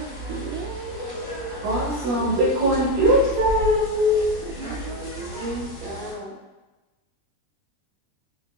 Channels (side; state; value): left; late; 21 ms